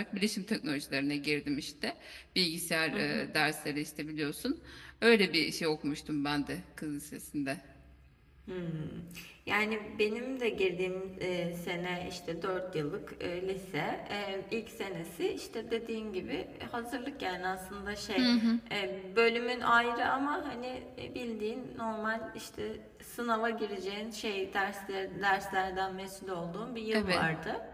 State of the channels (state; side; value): identical; both; correlation 1.00